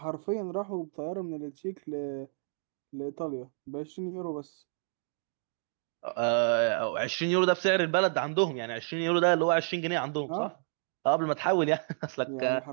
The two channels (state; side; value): silent; left; digital silence